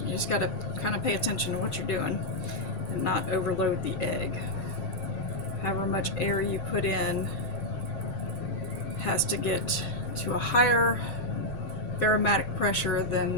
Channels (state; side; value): late; right; 7.6 ms